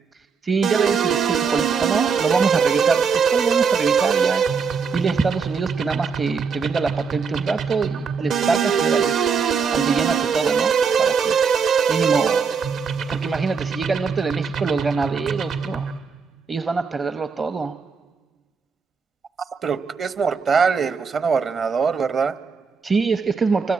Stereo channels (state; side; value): quieter; left; 5.6 dB